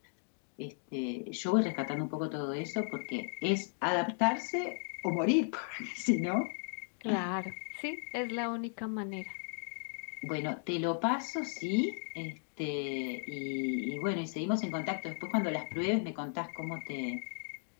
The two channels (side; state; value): right; silent; 54 dB below the other